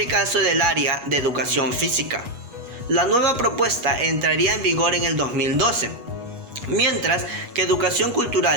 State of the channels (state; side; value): late; left; 8.3 ms